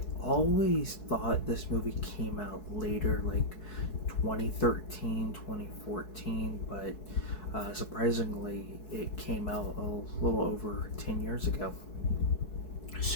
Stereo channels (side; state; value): right; late; 4.7 ms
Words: always thought this movie came out later, like 2013, 2014, but surprisingly, it came out a little over 10 years ago.